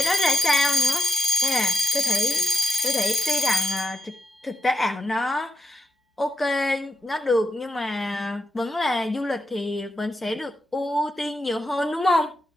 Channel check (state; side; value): normal; both; correlation 0.85